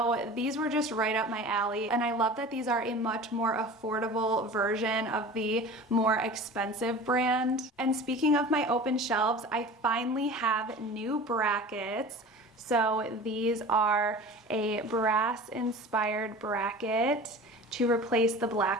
these were just right up my alley, and I love that these are a much more affordable version of the more expensive brand. And speaking of my open shelves, I finally have new brackets. So these are a brass inspired bracket to replace the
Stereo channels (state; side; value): normal; both; correlation 0.38